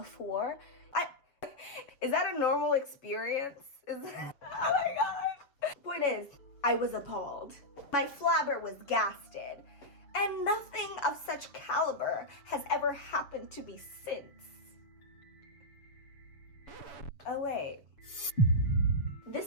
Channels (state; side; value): late; right; 7.0 ms